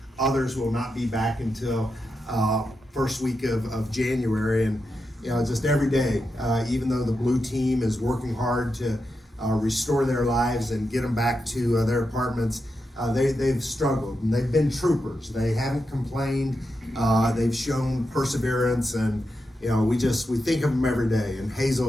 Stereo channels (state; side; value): normal; both; correlation 0.87